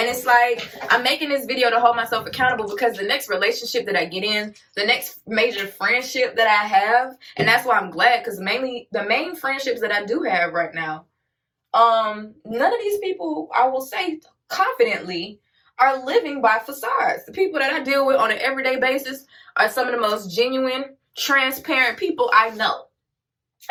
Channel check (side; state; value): both; identical; correlation 1.00